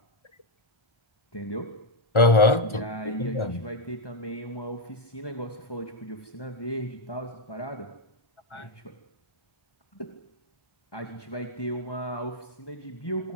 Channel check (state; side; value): late; right; 1.4 ms